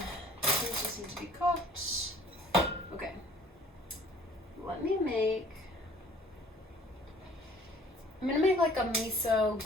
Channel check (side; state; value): both; normal; correlation 0.54